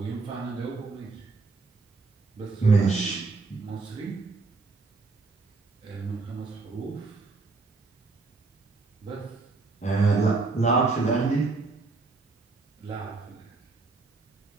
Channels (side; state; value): left; quieter; 3.8 dB